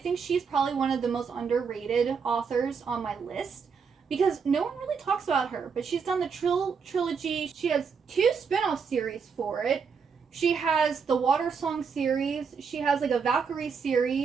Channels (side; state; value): left; quieter; 5.9 dB